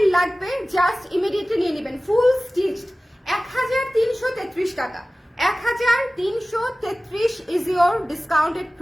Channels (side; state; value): both; normal; correlation 0.97